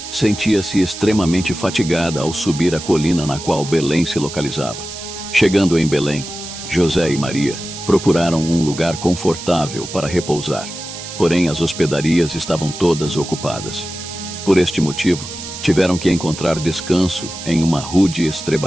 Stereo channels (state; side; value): noise; right; hiss, 10 dB below the sound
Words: sentia-se extremamente fatigada ao subir a colina na qual Belém se localizava. Chegando em Belém, José e Maria procuraram um lugar confortável para repousar, porém as hospedarias estavam todas ocupadas. Por este motivo, tiveram que encontrar descanso em uma rude